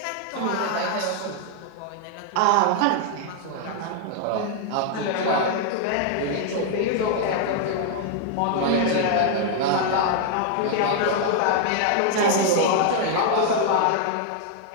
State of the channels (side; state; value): both; different; correlation 0.00